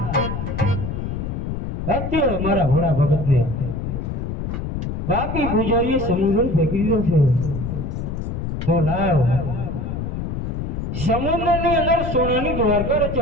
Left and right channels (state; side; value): noise; left; rumble, 4 dB below the sound